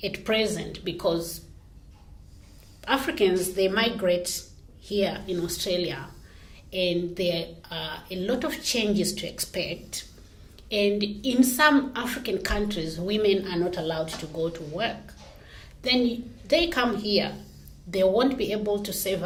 at present, because Africans, they migrate here in Australia, and there are a lot of changes to expect. And in some African countries, women are not allowed to go to work. Then they come here, they won't be able to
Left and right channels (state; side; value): identical; both; correlation 1.00